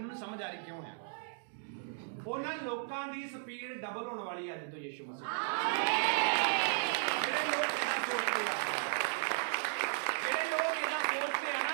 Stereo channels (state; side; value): silent; left; digital silence